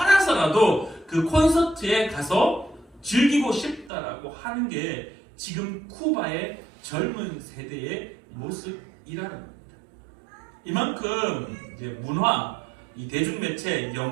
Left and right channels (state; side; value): drops out; left; at 3.9 s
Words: 그 콘서트에 가서 즐기고 싶다라고 하는 게 지금 쿠바의 젊은 세대의 모습이라는 겁니다. 이만큼 이제 문화, 이 대중매체,